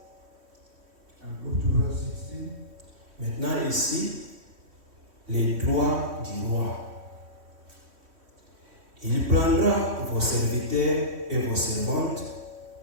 And go to verse 16. Maintenant ici, les droits du roi. Il prendra vos serviteurs et vos servantes,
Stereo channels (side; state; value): left; late; 3.1 ms